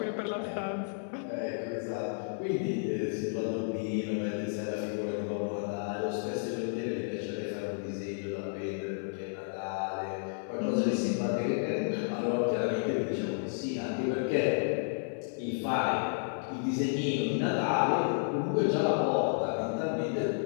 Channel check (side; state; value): right; silent; 55 dB below the other